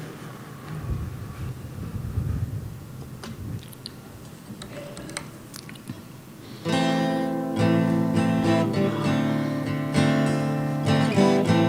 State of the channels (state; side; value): identical; both; correlation 1.00